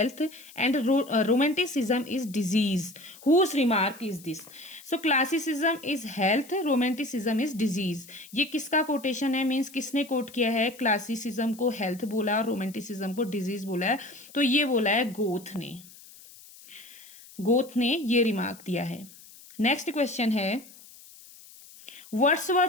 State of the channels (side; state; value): left; noise; hiss, 21 dB below the sound